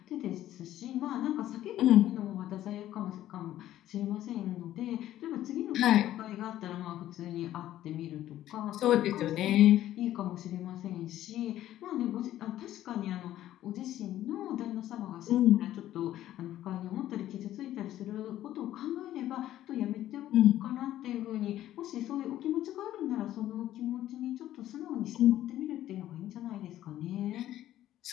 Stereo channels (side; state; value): right; quieter; 13.1 dB